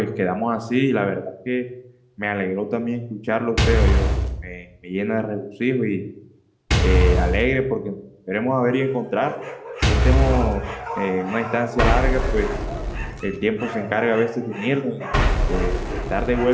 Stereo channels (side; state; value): both; identical; correlation 1.00